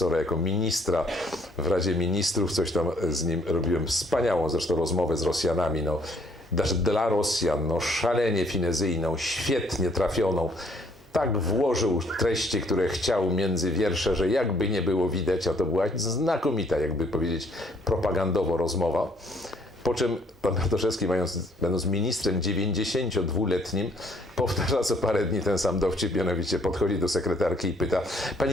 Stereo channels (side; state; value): both; normal; correlation 0.65